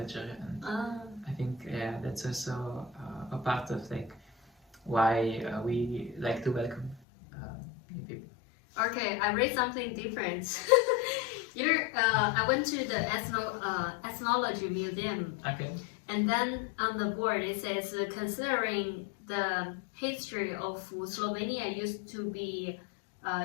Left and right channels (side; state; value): right; drops out; at 7.0 s